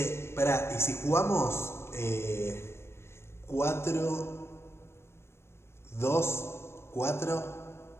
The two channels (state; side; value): late; right; 0.12 ms